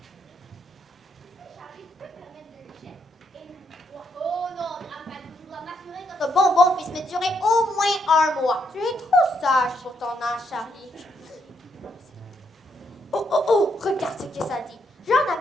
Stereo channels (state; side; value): normal; both; correlation 0.76